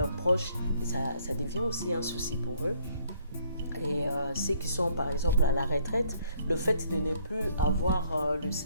proches, ça devient aussi un souci pour eux. Et ceux qui sont par exemple à la retraite, le fait de ne plus avoir le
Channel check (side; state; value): both; inverted; correlation -0.64